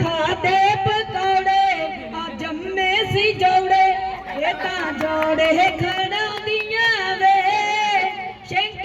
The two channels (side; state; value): both; identical; correlation 1.00